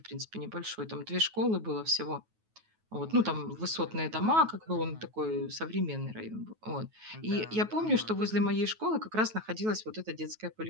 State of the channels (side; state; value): left; late; 9.3 ms